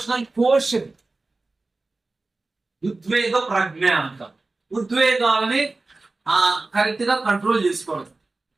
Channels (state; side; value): quieter; left; 3.3 dB